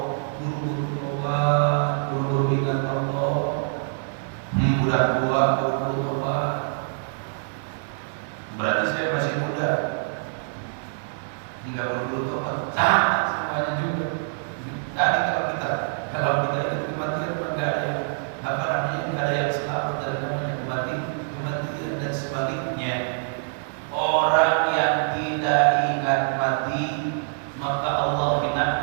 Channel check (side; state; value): left; silent; digital silence